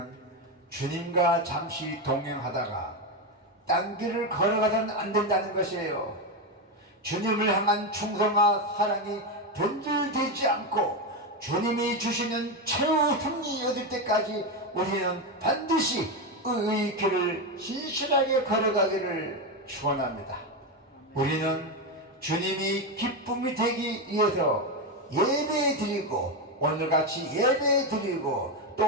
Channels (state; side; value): normal; both; correlation 0.11